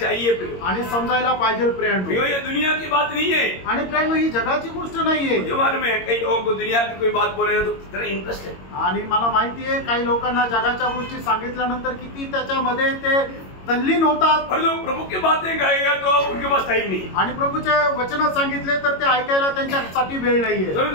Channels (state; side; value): late; right; 22 ms